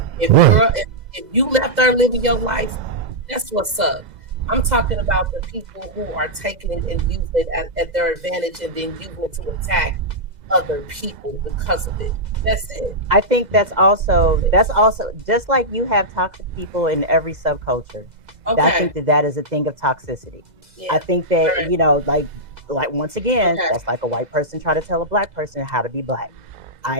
If you left there living your life, that's what's up. I'm talking about the people who are taking it and using it at their advantage and then using it to attack other people because of it. That's it. I think that's also just like you have toxic people in every subculture. Okay. I think that is a thing of toxicity. Yeah. I think that like once again, that's like a white person trying to tell a black person how to be black.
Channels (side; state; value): left; late; 2.0 ms